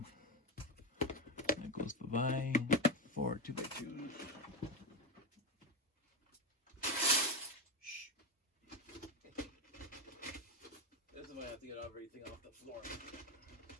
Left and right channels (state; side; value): normal; both; correlation 0.10